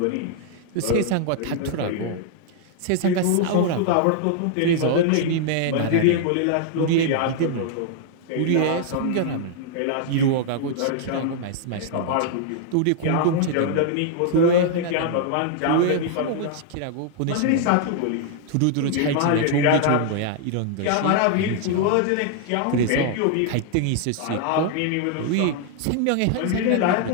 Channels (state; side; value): different; both; correlation 0.00